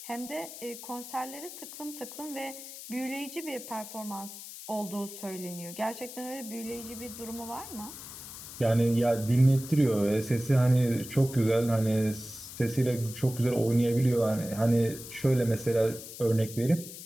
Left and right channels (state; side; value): noise; left; hiss, 12 dB below the sound